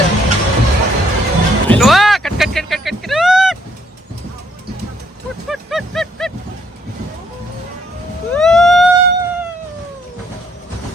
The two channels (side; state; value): both; normal; correlation 0.68